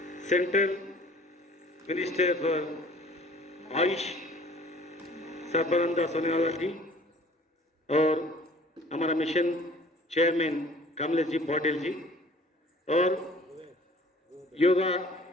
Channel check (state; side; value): normal; both; correlation 0.51